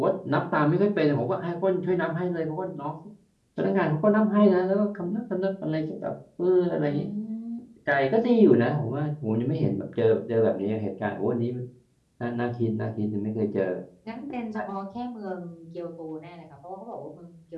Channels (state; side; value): identical; both; correlation 1.00